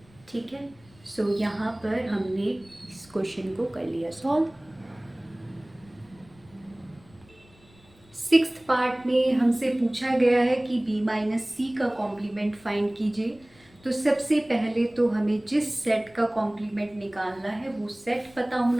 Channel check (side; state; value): left; noise; rumble, 27 dB below the sound